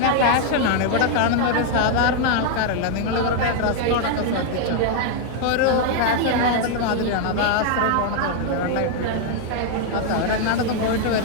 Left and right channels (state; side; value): different; both; correlation 0.00